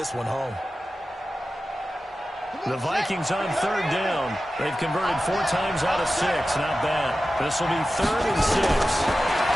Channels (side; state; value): both; normal; correlation 0.94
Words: one home. The Vikings on third down. They've converted 4 times out of 6. Not bad. This will be 3rd and 6.